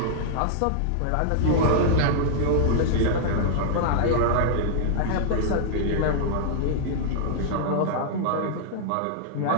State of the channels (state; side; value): different; both; correlation -0.01